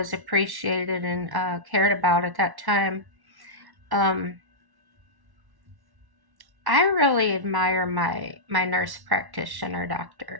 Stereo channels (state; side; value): late; left; 1.1 ms